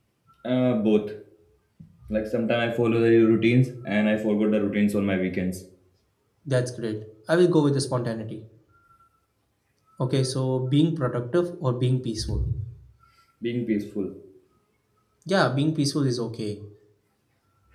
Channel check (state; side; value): identical; both; correlation 1.00